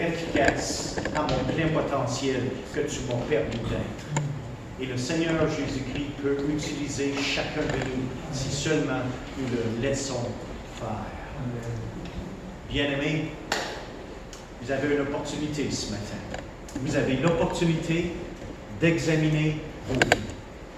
efficace à mon plein potentiel que tu m'as permis d'être. Et le Seigneur Jésus-Christ peut utiliser chacun de nous si seulement nous le laissons faire. Bien-aimés, vous avez une opportunité ce matin. Vous avez l'opportunité d'examiner vos vies.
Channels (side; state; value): both; identical; correlation 1.00